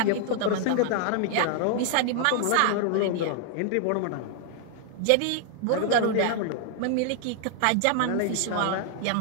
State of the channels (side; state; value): both; different; correlation 0.00